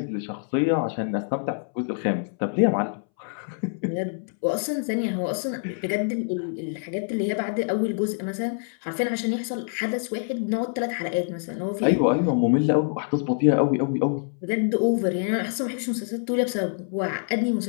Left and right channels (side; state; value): right; silent; 61 dB below the other